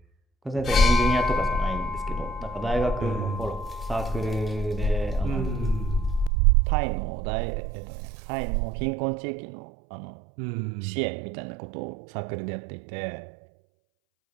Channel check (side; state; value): left; drops out; at 6.3 s